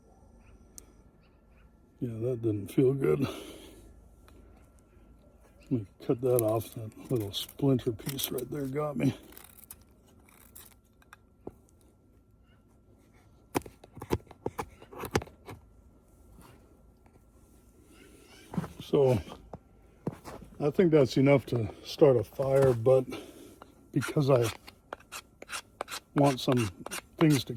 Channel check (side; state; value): both; identical; correlation 1.00